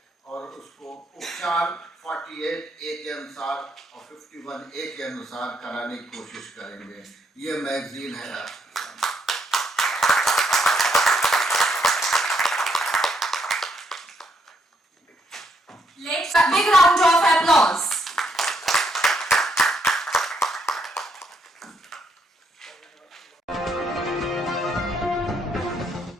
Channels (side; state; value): both; normal; correlation 0.74